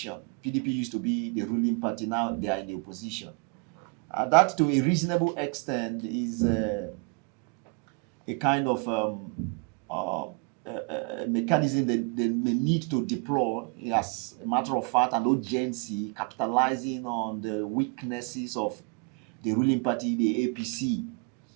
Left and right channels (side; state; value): left; quieter; 33.8 dB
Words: PDP used to be the ruling party, now they are in the opposition. That to a reasonable extent is a kind of mechanism that they may need to deploy as a matter of fact and urgency, capitalizing on the weaknesses of the ruling party, the APC,